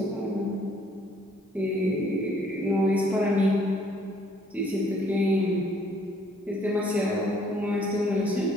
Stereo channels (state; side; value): normal; both; correlation 0.63